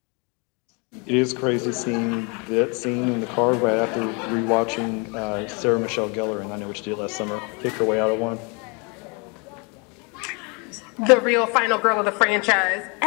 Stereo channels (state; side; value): quieter; right; 32.2 dB